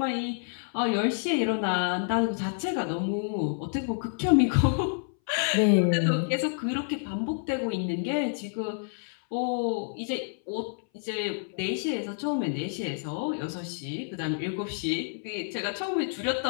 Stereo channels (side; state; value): right; silent; 59 dB below the other